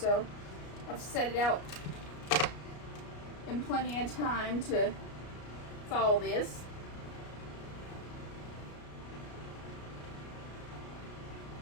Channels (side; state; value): right; late; 33 ms